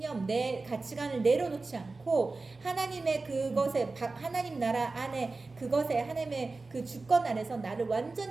내 가치관을 내려놓지 않고 하나님의 그것에, 하나님 나라 안에 그것에, 하나님의 그 주권 안에서 나를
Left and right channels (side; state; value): left; quieter; 3.6 dB